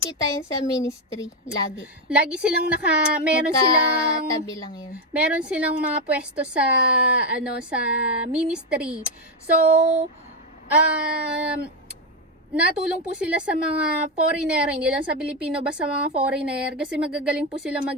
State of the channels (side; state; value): both; normal; correlation 0.07